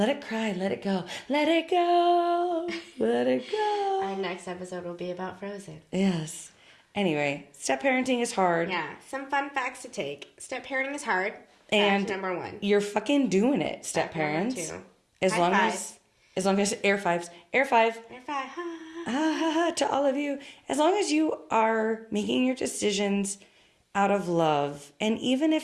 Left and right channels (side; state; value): both; identical; correlation 1.00